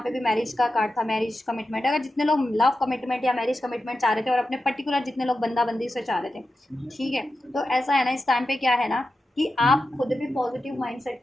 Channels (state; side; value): normal; both; correlation 0.91